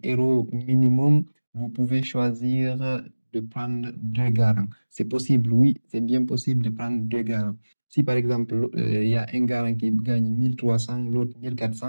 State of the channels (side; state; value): both; inverted; correlation -1.00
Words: euros minimum, vous pouvez choisir de prendre 2 garants. C'est possible, oui, c'est bien possible de prendre 2 garants. Si par exemple, il y a un garant qui gagne 1300, l'autre